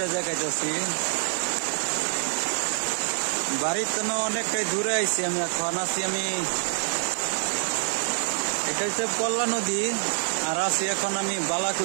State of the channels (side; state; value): left; silent; 58 dB below the other